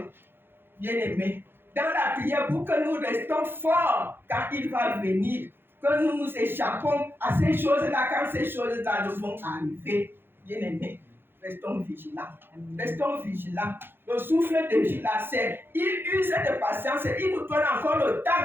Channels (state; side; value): late; left; 0.10 ms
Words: bien-aimé, dans la prière pour que nous restons forts quand il va venir, que nous nous échappons à ces choses-là quand ces choses-là vont arriver. Bien-aimé, restons vigilants. Restons vigilants. Le souffle de vie, là, il use de patience, il nous donne encore le